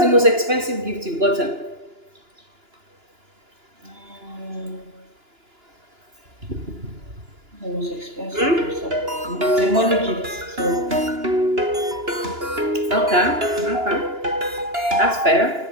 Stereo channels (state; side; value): late; left; 2.9 ms